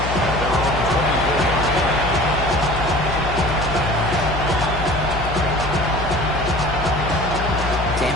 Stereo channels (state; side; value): noise; left; hum, 6 dB below the sound